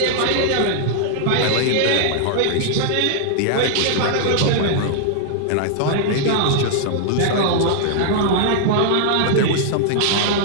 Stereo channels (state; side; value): different; both; correlation -0.01